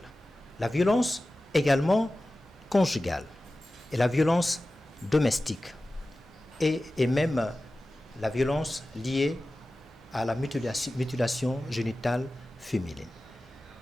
la violence également conjugale et la violence domestique et même la violence liée à la mutilation génitale féminine.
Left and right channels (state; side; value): normal; both; correlation 0.95